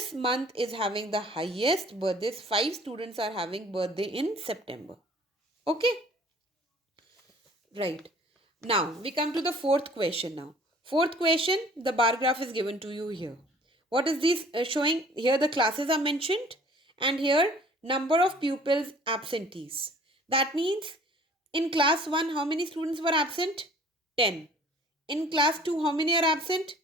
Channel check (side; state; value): both; normal; correlation 0.52